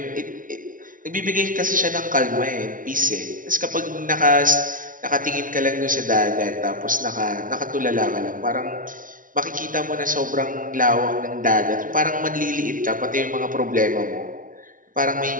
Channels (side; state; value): left; late; 0.39 ms